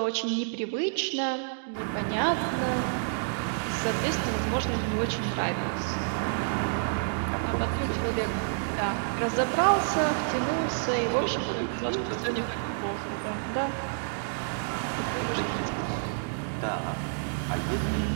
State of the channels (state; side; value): silent; left; digital silence